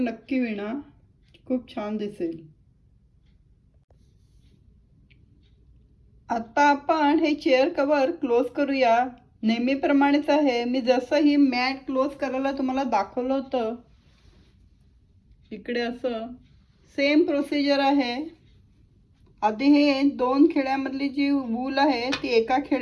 विणा, खूप छान दिसेल. आता आपण हे चेअर कव्हर क्लोज करूया. नेहमीप्रमाणेच आहे, मी जसं ही मॅट क्लोज करायला तुम्हाला दाखवलं होतं इकडे असं सेम प्रोसिजर आहे. आधी हे 2 खेड्यामधली जी वूल आहे ती एका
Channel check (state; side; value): identical; both; correlation 1.00